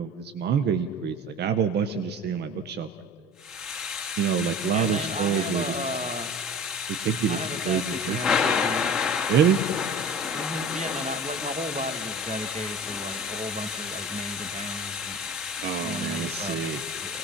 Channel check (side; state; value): both; normal; correlation 0.39